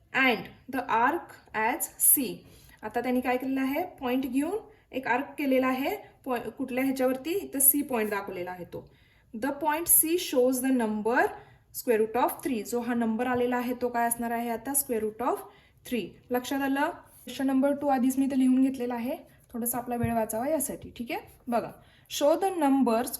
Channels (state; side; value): identical; both; correlation 1.00